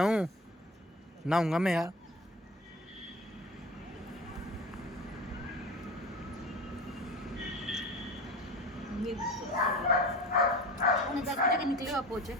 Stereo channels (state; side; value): normal; both; correlation 0.34